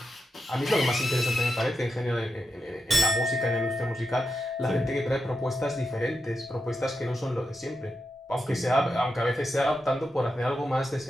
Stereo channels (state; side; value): normal; both; correlation 0.87